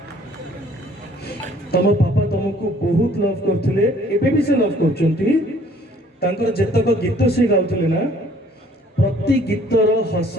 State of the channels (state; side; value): normal; both; correlation 0.58